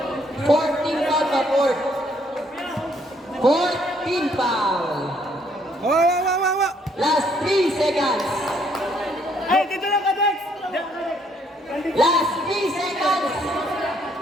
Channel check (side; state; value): both; normal; correlation 0.68